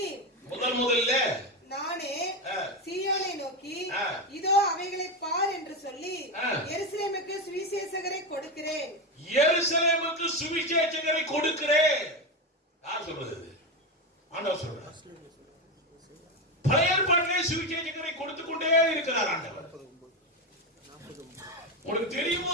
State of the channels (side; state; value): both; normal; correlation 0.14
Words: முதல்ல நானே சீயோனை நோக்கி இதோ அவைகளை பார் என்று சொல்லி எருசலேமுக்கு சுவிசேஷகரை கொடுக்கிறேன். எருசலேமுக்கு சுவிசேஷகரை கொடுக்கிறேன். யார் சொல்றது? ஆண்டவர் சொல்றார். பழைய ஏற்பாட்டிலே சுவிசேஷகரை கொடுத்து கொண்டே இருக்கிறார் ஆண்டவர். உங்களுக்கு தெரியுமோ